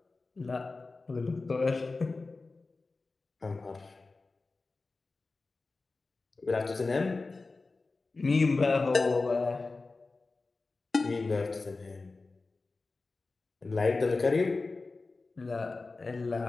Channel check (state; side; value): quieter; right; 3.7 dB